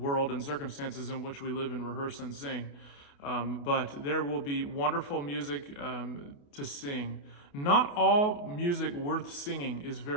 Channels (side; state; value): right; late; 28 ms